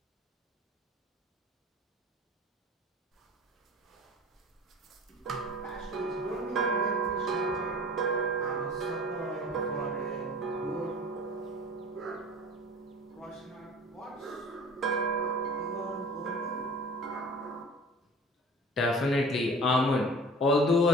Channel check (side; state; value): both; normal; correlation 0.43